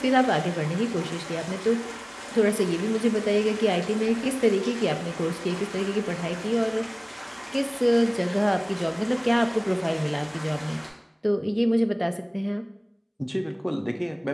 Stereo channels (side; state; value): both; identical; correlation 1.00